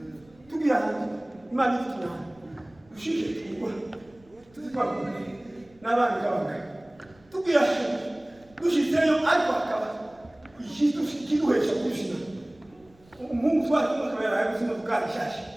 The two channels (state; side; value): noise; right; rumble, 29 dB below the sound